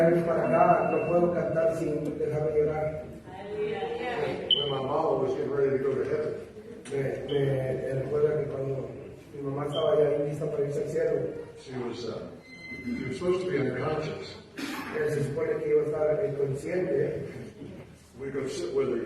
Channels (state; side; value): identical; both; correlation 1.00